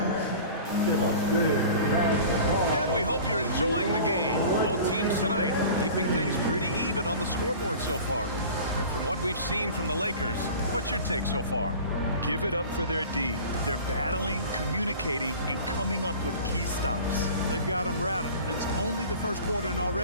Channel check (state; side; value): inverted; both; correlation -0.40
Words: And we hope you're enjoying the game. Both teams tonight keeping things pretty even on the scoreboard so far. And from what we've seen from the Lakers, what's your take so far? Give it up for their D. They're battling, communicating, and coming up with key stops. They've got them rattled. It's only the first quarter, and